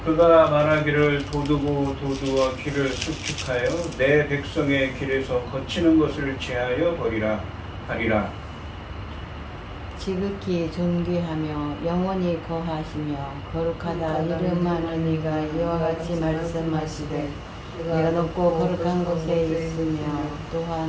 그가 말하기를 도두고 도두어 길을 수축하여 내 백성의 길에서 거치는 것을 제하여 버리라 하리라. 지극히 존귀하며 영원히 거하시며 거룩하다 이름하는 이가 이와 같이 말씀하시되 내가 높고 거룩한 곳에 있으며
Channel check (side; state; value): both; identical; correlation 1.00